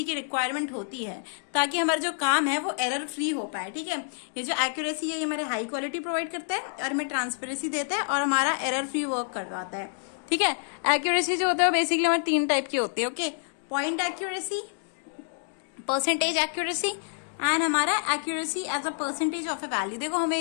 की रिक्वायरमेंट होती है ताकि हमारा जो काम है वो एरर फ्री हो पाए. ठीक है, ये जो एक्यूरेसी है ये हमारे हाई क्वालिटी प्रोवाइड करता है और हमें ट्रांसपेरेंसी देता है और हमारा एरर फ्री वर्क करवाता है. ठीक है, एक्यूरेसी जो होता है बेसिकली हमारे 3 टाइप की होती है. Okay, point accuracy, percentage accuracy and हमारा accuracy as a percentage of a value. देखो हमें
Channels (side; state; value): right; silent; digital silence